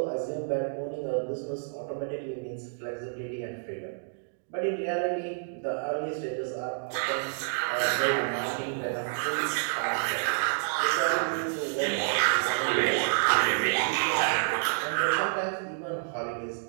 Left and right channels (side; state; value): left; silent; digital silence